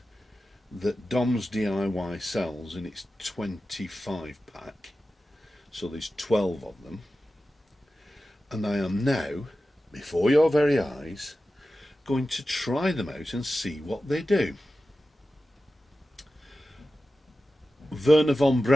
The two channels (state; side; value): normal; both; correlation 0.94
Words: that Dom's DIY sells in its 25 pack. So there's 12 of them. And I am now, before your very eyes, going to try them out and see what they do. Wernher von